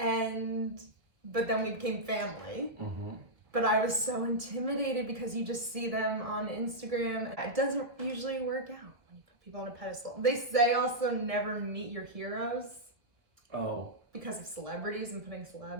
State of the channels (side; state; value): left; late; 1.4 ms